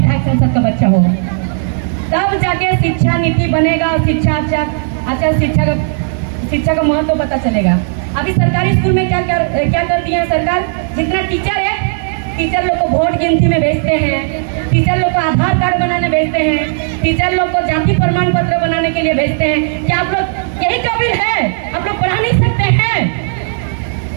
संसद का बच्चा हो, तब जाके शिक्षा नीति बनेगा और अच्छा शिक्षा का महत्व पता चलेगा। अभी सरकारी स्कूल में क्या कर दिया है सरकार, जितना टीचर है, टीचर लोग को वोट गिनती में भेजते हैं, टीचर लोग को आधार कार्ड बनाने भेजते हैं, टीचर लोग को जाति प्रमाण पत्र बनाने के लिए भेजते हैं। क्या आप लोग यही काबिल है? आप लोग पढ़ा नहीं सकते हैं?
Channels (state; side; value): silent; left; digital silence